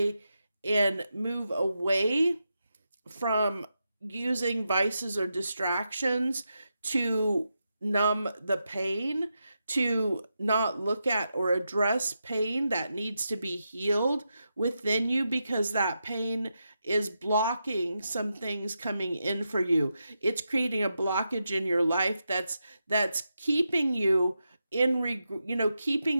and move away from using vices or distractions to numb the pain, to not look at or address pain that needs to be healed within you, because that pain is blocking some things coming in for you. It's creating a blockage in your life that's keeping you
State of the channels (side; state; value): both; inverted; correlation -0.87